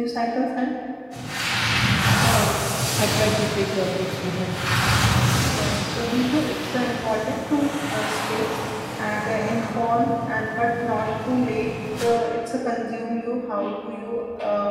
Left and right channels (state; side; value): identical; both; correlation 1.00